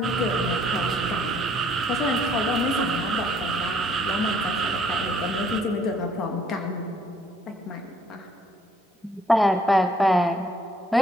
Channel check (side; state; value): both; normal; correlation 0.63